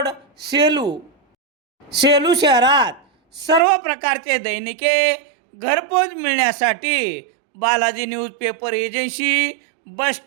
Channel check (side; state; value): left; drops out; at 3.6 s